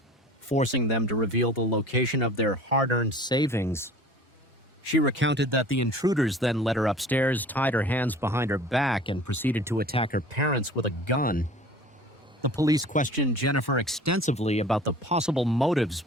forcing them to reveal the location of their hard-earned savings. She recounted that the intruders then led her upstairs, tied her hands behind her back, and proceeded to attack her parents with a gun. The police questioned Jennifer extensively about the possible motives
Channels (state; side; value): normal; both; correlation 0.44